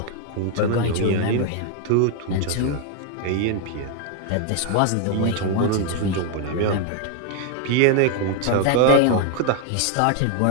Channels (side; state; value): both; different; correlation 0.00